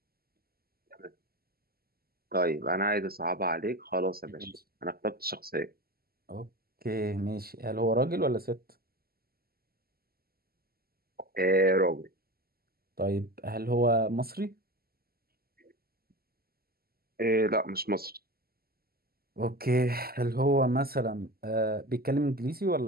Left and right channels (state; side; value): late; left; 0.45 ms